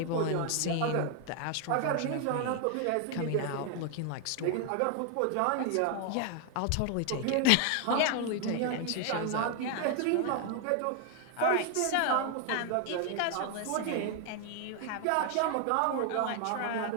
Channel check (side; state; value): both; different; correlation 0.00